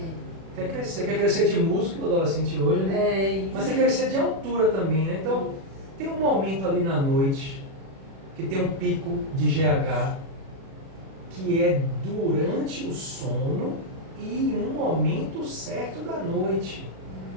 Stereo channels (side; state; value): left; late; 37 ms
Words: Quer crescer de músculo, o adolescente hoje, né? Mas quer crescer de altura também, né? Então, tem um momento ali na noite que tem um pico de GH, que é durante o sono e um momento certo da noite.